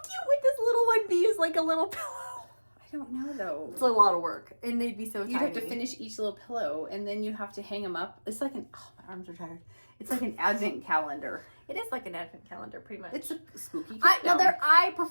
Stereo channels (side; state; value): both; inverted; correlation -1.00